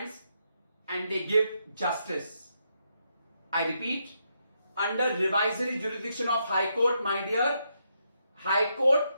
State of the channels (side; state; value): both; inverted; correlation -0.80